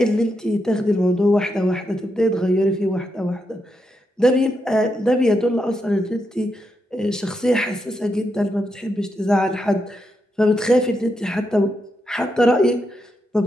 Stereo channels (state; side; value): normal; both; correlation 0.83